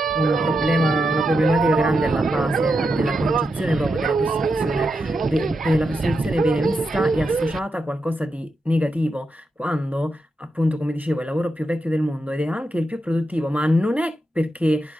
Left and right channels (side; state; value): both; normal; correlation 0.86